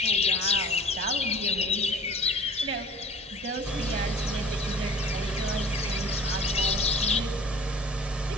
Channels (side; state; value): both; normal; correlation 0.46